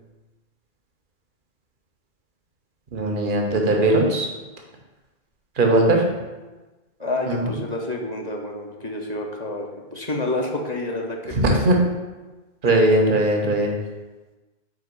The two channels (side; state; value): left; late; 2.4 ms